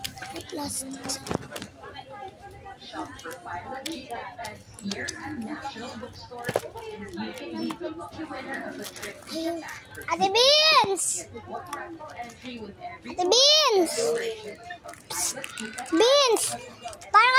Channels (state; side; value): identical; both; correlation 1.00